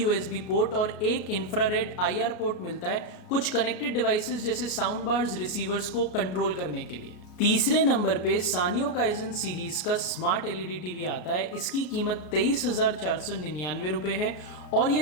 पोर्ट और एक इंफ्रारेड IR पोर्ट मिलता है कुछ कनेक्टेड डिवाइसेस जैसे साउंड बार्स, रिसीवर्स को कंट्रोल करने के लिए। तीसरे नंबर पे सानियो काइजन सीरीज का स्मार्ट LED टीवी आता है। इसकी कीमत 23,499 रुपए है और ये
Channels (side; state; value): right; late; 33 ms